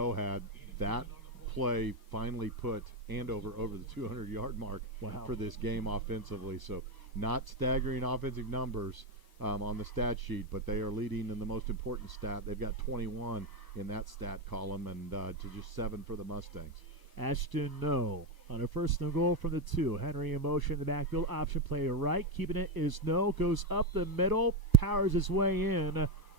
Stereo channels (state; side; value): late; left; 1.2 ms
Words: had, that play finally put Andover over the 200-yard mark for this game offensively. So not staggering offensive numbers on the stat sheet, but they are leading in the most important stat. They've got 21 in that stat column, and to just 7 for the Mustangs. Ashton No. On a first and goal from the 2. Henry in motion in the backfield. Option play to right. Keeping it is No. Goes up the middle. Powers his way in.